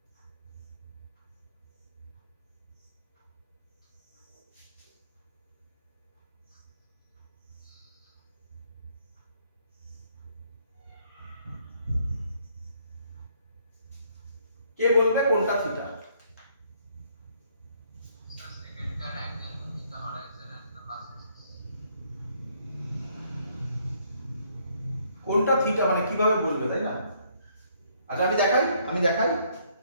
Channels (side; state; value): both; inverted; correlation -0.67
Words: কে বলবে কোনটা theta? Sir, second car angle between the horizon and the axis. কোনটা থিটা মানে কিভাবে বলবে, তাই না? আচ্ছা আমি দেখাই,